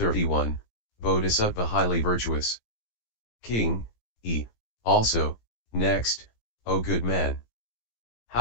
Bodhisattva Highly-Virtuous. King, also, next, O good man.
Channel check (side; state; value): right; late; 17 ms